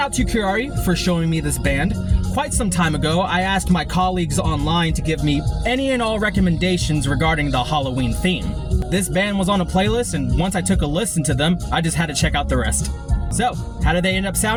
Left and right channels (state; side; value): identical; both; correlation 1.00